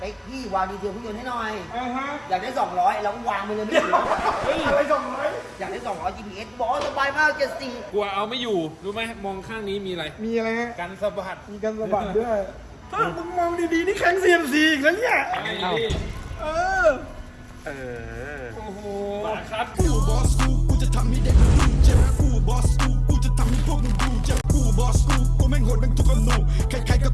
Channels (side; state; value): both; identical; correlation 1.00